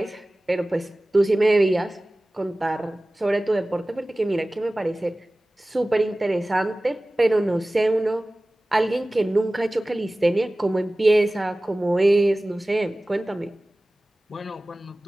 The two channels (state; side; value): normal; both; correlation 0.97